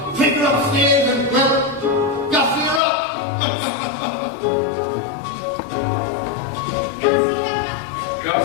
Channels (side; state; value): right; drops out; at 2.8 s